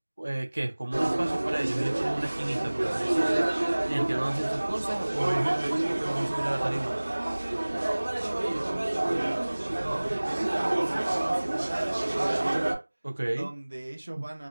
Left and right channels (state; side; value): inverted; both; correlation -1.00